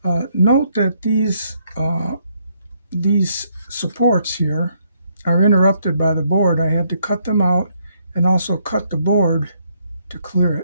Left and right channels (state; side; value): inverted; both; correlation -0.72